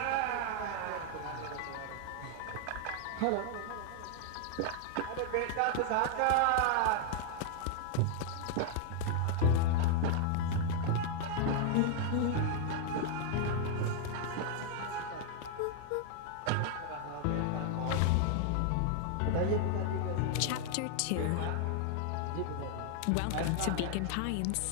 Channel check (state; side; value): different; both; correlation 0.00